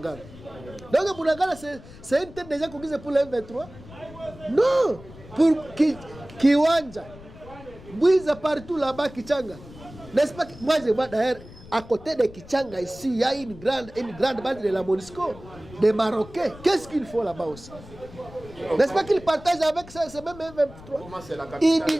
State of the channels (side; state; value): left; noise; rumble, 18 dB below the sound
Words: Donc Bunagana, c'est une tête déjà conquise pour le M23? Non. Pour Kiwanja, Bouiza partout là-bas, Kichanga. N'est-ce pas? Moi je vois d'ailleurs, à côté de Kichanga ici, il y a une grande base de la MONUSCO, des Marocains. Qu'est-ce qu'il faut là-bas aussi? N'est-ce pas qu'ils partagent avec ce même M23?